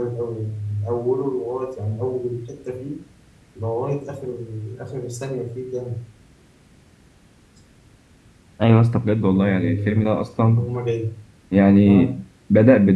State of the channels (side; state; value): both; identical; correlation 1.00